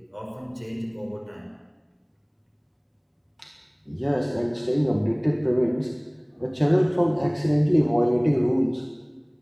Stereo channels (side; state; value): both; identical; correlation 1.00